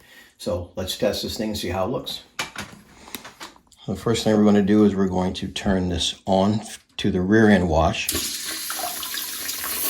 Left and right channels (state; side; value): identical; both; correlation 1.00